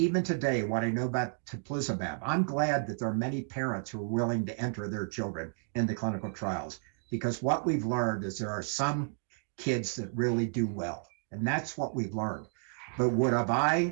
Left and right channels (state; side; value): silent; left; 57 dB below the other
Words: today, what I know about teplizumab, I'm glad that there are many parents who are willing to enter their children into clinical trials, because what we've learned is there are some kids that really do well, and that's what we've learned. But would have